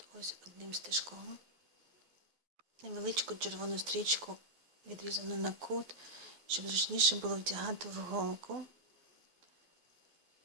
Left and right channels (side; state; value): left; late; 12 ms